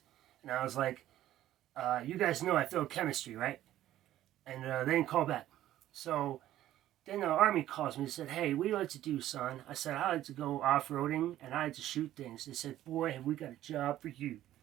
And I was like, you guys know I failed chemistry, right? And they didn't call back. So then the Army calls me and said, hey, what do you like to do, son? I said, I like to go off-roading and I like to shoot things. They said, boy, have we got a job for you.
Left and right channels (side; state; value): left; quieter; 13.3 dB